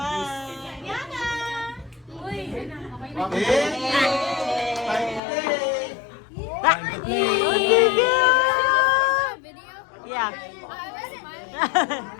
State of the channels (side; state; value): right; drops out; at 5.2 s